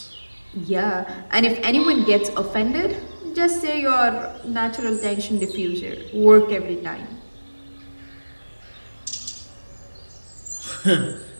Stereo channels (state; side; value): inverted; both; correlation -1.00